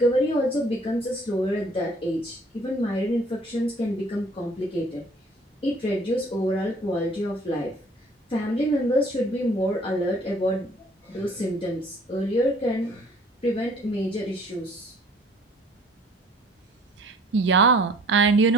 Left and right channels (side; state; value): both; normal; correlation 0.55